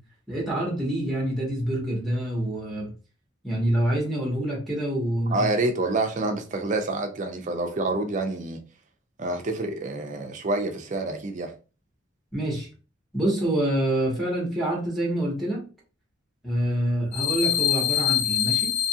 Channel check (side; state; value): both; normal; correlation 0.53